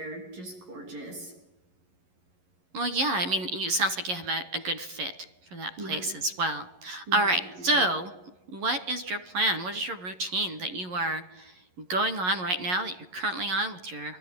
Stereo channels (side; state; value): left; late; 11 ms